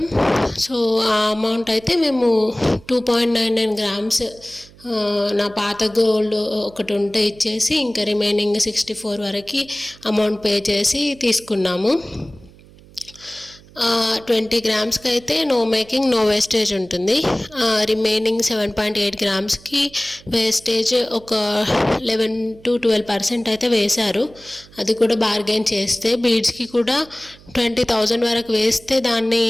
సో ఆ అమౌంట్ అయితే మేము 2.99 గ్రామ్స్ నా పాత గోల్డ్ ఒకటి ఉంటే ఇచ్చేసి ఇంకా రిమైనింగ్ 64 వరకు అమౌంట్ పే చేసి తీసుకున్నాము. 20 గ్రామ్స్కి అయితే నో మేకింగ్ నో వేస్టేజ్ ఉంటుంది. రిమైనింగ్ 7.8 గ్రామ్స్కి వేస్టేజ్ ఒక 11 to 12% అయితే వేశారు. అది కూడా బార్గెన్ చేస్తే. బీడ్స్కి కూడా 20,000 వరకు వేస్తే దాన్ని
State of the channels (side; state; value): right; noise; hum, 24 dB below the sound